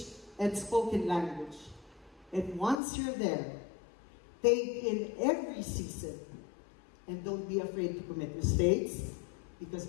and spoken language. And once you're there, take in every season and don't be afraid to commit mistakes,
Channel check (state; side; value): drops out; right; at 2.8 s